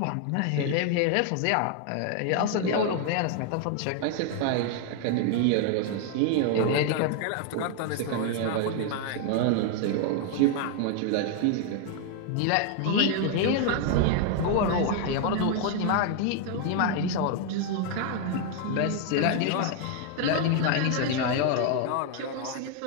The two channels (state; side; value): different; both; correlation 0.00